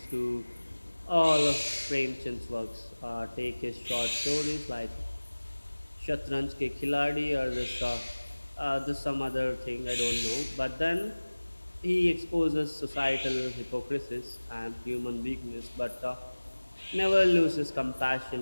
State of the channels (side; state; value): both; inverted; correlation -1.00